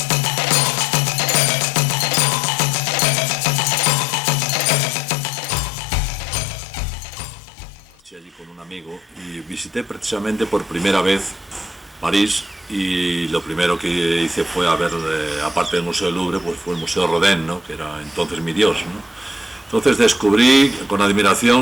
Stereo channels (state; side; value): normal; both; correlation 0.68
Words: Allí con un amigo y visité precisamente por primera vez París, y lo primero que hice fue a ver, aparte del Museo del Louvre, pues fue el Museo Rodin, ¿no?, que era entonces mi dios, ¿no? Entonces descubrí con